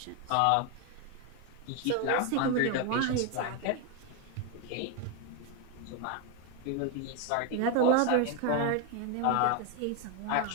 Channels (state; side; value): different; both; correlation 0.01